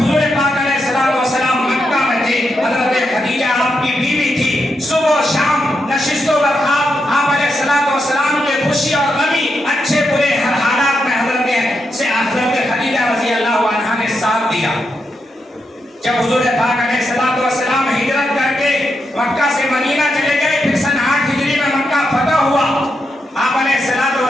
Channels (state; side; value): normal; both; correlation 0.84